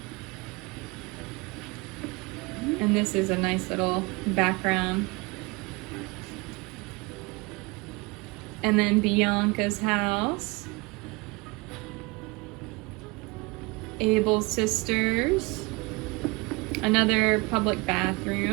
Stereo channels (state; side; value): quieter; left; 25.9 dB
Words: And this is a nice little background. And then Bianca's house. Abel's sisters. Another public